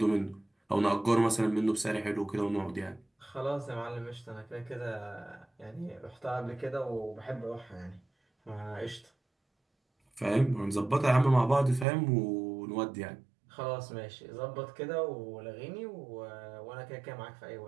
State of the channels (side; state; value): left; drops out; at 11.9 s